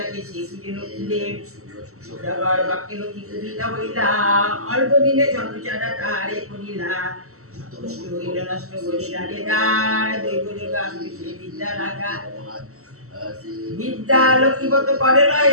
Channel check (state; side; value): late; left; 0.64 ms